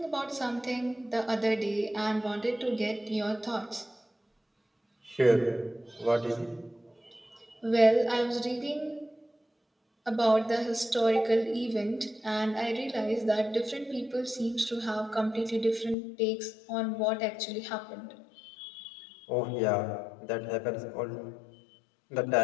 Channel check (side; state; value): right; drops out; at 16.0 s